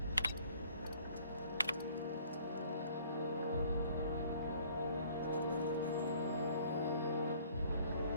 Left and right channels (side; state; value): both; inverted; correlation -0.57